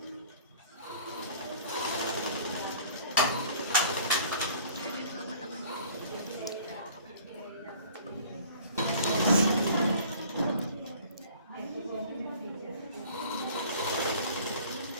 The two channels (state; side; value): inverted; both; correlation -0.50